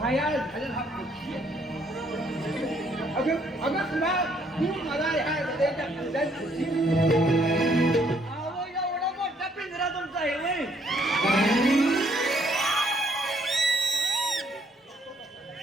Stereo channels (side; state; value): both; normal; correlation 0.68